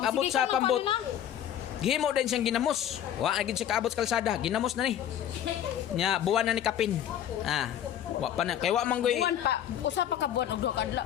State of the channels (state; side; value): quieter; right; 10.4 dB